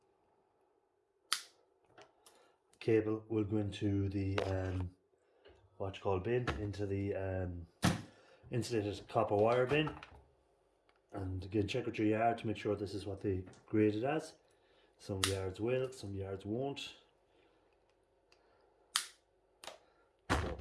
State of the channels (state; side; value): identical; both; correlation 1.00